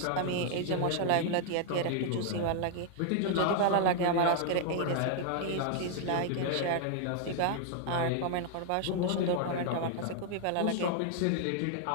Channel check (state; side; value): different; both; correlation 0.00